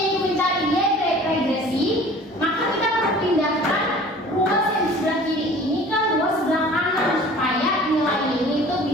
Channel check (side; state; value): both; normal; correlation 0.46